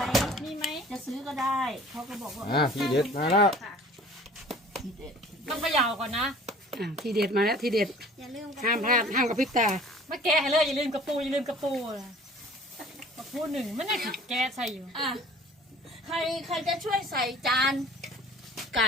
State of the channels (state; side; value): normal; both; correlation 0.49